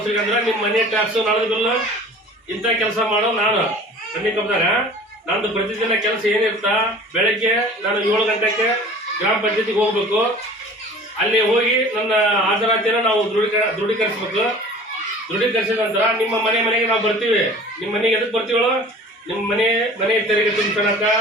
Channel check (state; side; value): normal; both; correlation 0.44